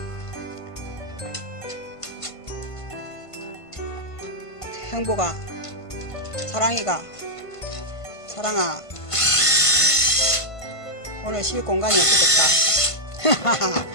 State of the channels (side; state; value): right; late; 1.5 ms